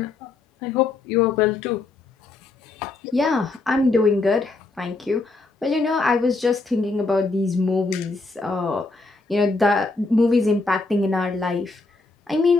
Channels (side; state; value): right; quieter; 3.5 dB